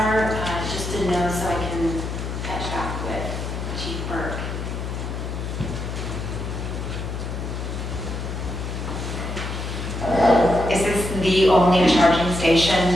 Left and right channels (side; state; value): left; noise; hum, 5 dB below the sound